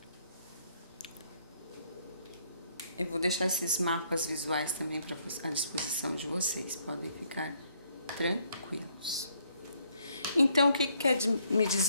Eu vou deixar esses mapas visuais também à disposição de vocês, podem ficar tranquilos. Então, o que quer me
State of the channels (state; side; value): inverted; both; correlation -0.69